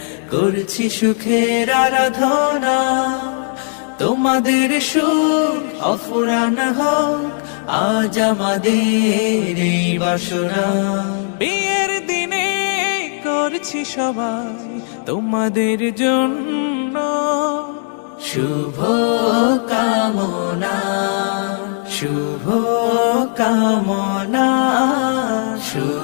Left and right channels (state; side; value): silent; right; digital silence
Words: করছি সুখের আরাধনা। তোমাদের সুখ অফুরান হোক আজ আমাদের এই বাসনা। বিয়ের দিনে করছি সবাই তোমাদের জন্য শুভ কামনা, শুভ কামনা,